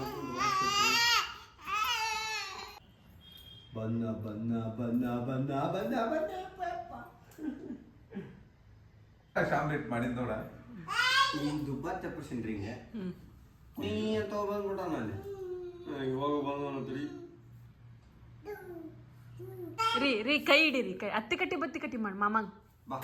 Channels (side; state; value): both; identical; correlation 1.00